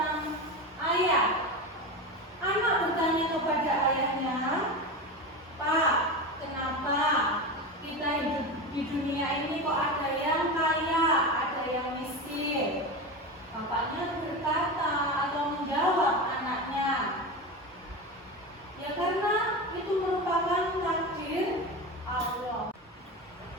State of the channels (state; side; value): normal; both; correlation 0.23